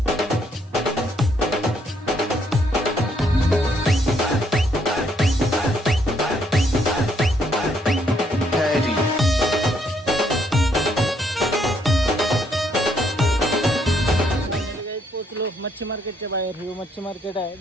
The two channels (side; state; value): both; normal; correlation 0.71